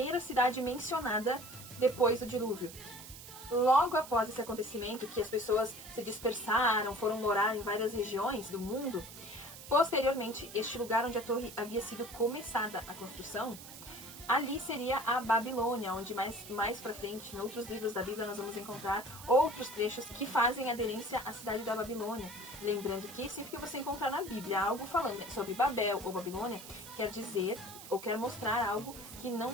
cidade mencionada depois do dilúvio. Logo após esse acontecimento, que as pessoas se dispersaram, foram morar em várias regiões do mundo, posteriormente, este lugar onde a torre havia sido começada a construção, ali seria a Babilônia, onde mais pra frente, em outros livros da Bíblia, nós vamos encontrar outros trechos que fazem aderência à cidade da Babilônia. Lembrando que sempre que você encontrar na Bíblia algo falando sobre Babel ou Babilônia, quer dizer ou quer mostrar algo que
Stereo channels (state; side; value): noise; right; hiss, 14 dB below the sound